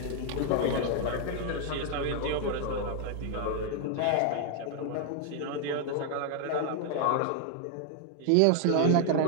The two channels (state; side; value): different; both; correlation 0.00